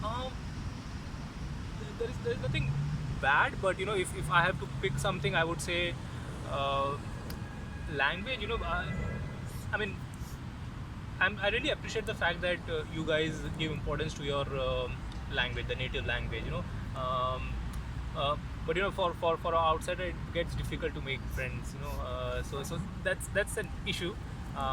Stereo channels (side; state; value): both; identical; correlation 1.00